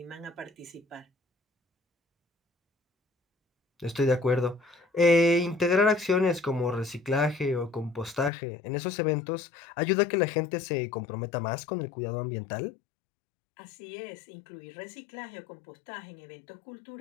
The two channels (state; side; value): drops out; right; at 8.3 s